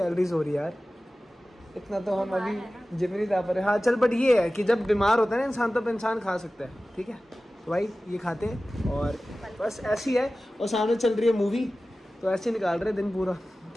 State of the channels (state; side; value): normal; both; correlation 0.96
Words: हो रही है यार, इतना तो हम अभी जिम नहीं जा पा रहे। हाँ चल, बट ये है कि जब बीमार होता है ना इंसान तब इंसान खा सकता है, ठीक है। तो भाई ये खाते हैं और बस ऐसी है। और सामने चल रही है मूवी, तो ऐसे निकाल रहे दिन पूरा,